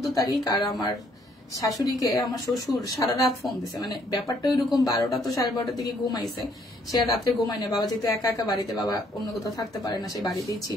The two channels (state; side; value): normal; both; correlation 0.67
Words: তারিখ আর আমার শাশুড়িকে আমার শ্বশুর সারা রাত ফোন দিছে। মানে ব্যাপারটা ওইরকম, 12টা তো 12:30 দিকে ঘুমাইছে, সে আর রাত্রে ঘুমায় না। বাবা যেহেতু একা একা বাড়িতে, বাবা অন্য কোথাও থাকতে পারে না, সে বাড়িতেই